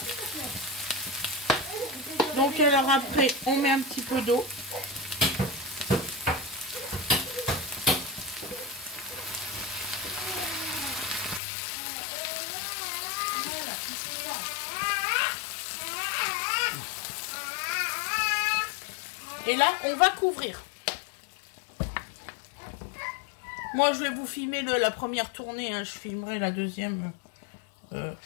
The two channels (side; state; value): right; drops out; at 11.4 s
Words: Donc alors après, on met un petit peu d'eau. Et là, on va couvrir. Moi, je vais vous filmer la première tournée. Hein. Je filmerai la deuxième